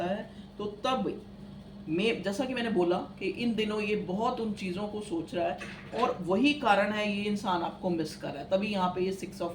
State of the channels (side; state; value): both; identical; correlation 1.00